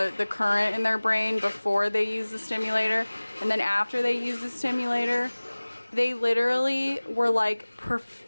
current in their brain before they used the stimulator, and then after they used the stimulator, they literally were like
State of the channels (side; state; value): both; inverted; correlation -1.00